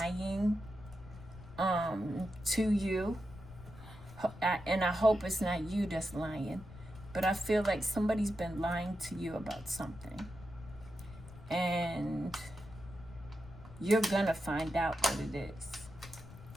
to you. And I hope it's not you that's lying. But I feel like somebody's been lying to you about something. And you're going to find out what it is.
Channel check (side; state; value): left; noise; rumble, 17 dB below the sound